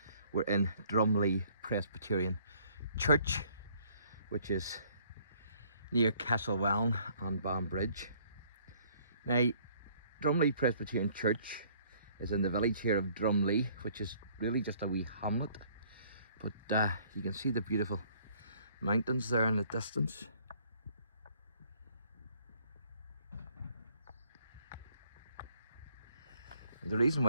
we're in Drumlee Presbyterian Church, which is near Castlewellan and Banbridge. Now, Drumlee Presbyterian Church is in the village here of Drumlee, which is really just a wee hamlet. But you can see the beautiful mountains there in the distance. And the reason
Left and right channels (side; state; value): both; inverted; correlation -0.61